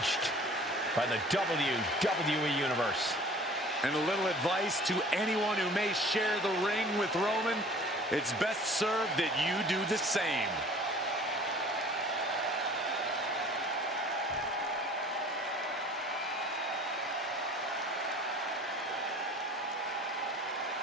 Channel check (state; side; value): normal; both; correlation 0.48